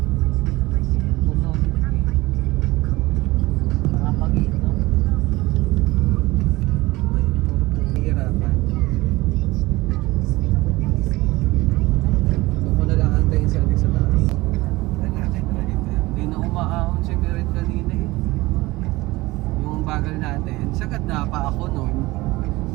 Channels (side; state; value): left; quieter; 20.2 dB